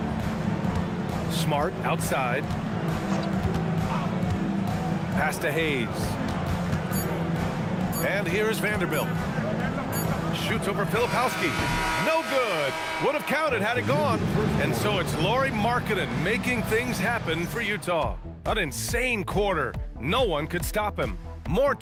Smart outside. Pass to Hayes. And here's Vanderbilt. Shoots over Filipowski. No good. Would have counted had it gone. And so it's Lauri Markkanen making things happen for Utah. An insane quarter. No one could stop him. More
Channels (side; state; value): both; identical; correlation 1.00